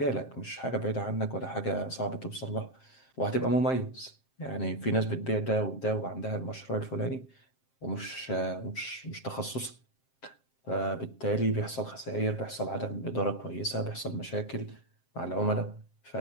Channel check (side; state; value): right; late; 7.6 ms